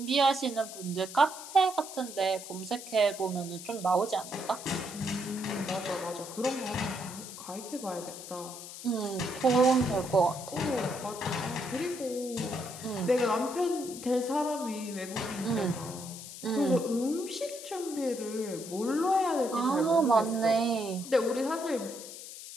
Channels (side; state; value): left; noise; hiss, 12 dB below the sound